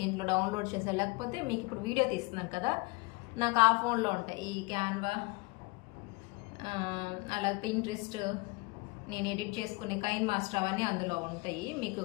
దీంట్లో డౌన్లోడ్ చేశాను. లేకపోతే మీకు ఇప్పుడు వీడియో తీస్తున్నాను కదా, నాకు ఆ ఫోన్లో ఉంటాయి ఈ క్యాన్వా, అలాగే పింట్రెస్ట్, నేను ఎడిట్ చేసుకునే కైన్ మాస్టర్ అవన్నీ అందులో ఉంటాయి. మీకు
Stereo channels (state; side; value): quieter; right; 25.7 dB